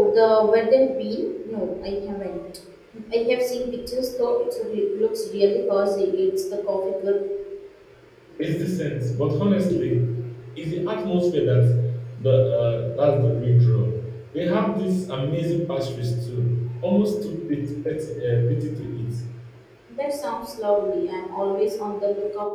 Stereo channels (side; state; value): both; identical; correlation 1.00